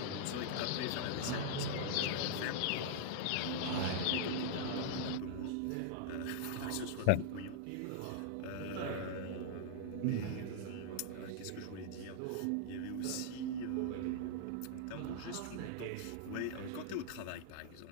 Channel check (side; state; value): both; different; correlation -0.01